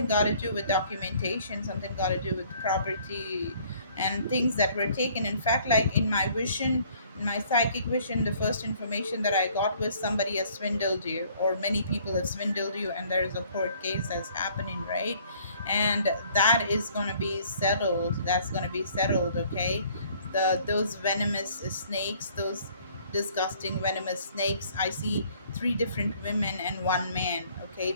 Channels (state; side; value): inverted; both; correlation -0.59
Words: got to do with documentation, something got to do with property and things that were taken. In fact, like in my psychic vision, the first information that I got was somebody has swindled you, or many people have swindled you, and there's a court case that's happening, right? And that is going to be settled. That's going to be settled, okay? Those venomous snakes, those disgusting venomous snakes. I see three different women and one man. Okay,